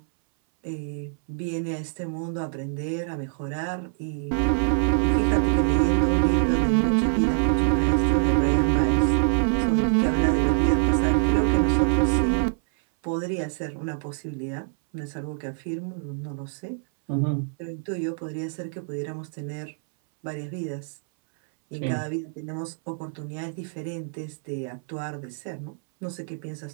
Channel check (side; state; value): left; silent; 61 dB below the other